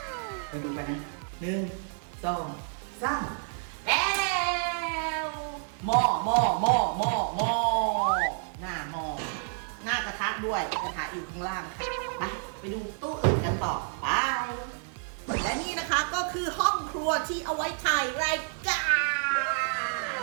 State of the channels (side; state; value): left; silent; 58 dB below the other